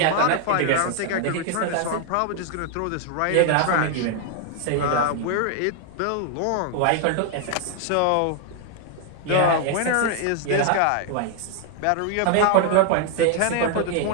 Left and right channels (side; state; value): both; different; correlation 0.00